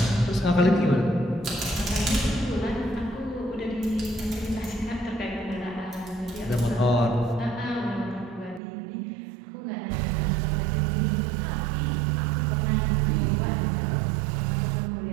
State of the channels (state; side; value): drops out; left; at 8.6 s